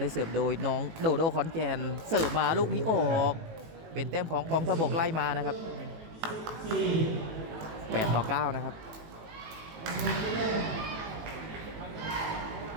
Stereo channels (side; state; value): left; late; 18 ms